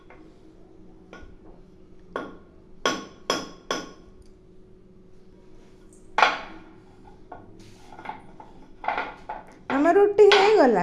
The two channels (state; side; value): identical; both; correlation 1.00